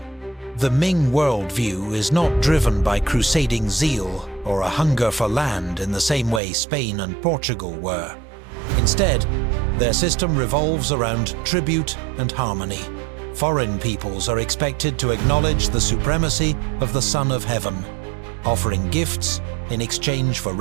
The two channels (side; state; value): left; drops out; at 6.4 s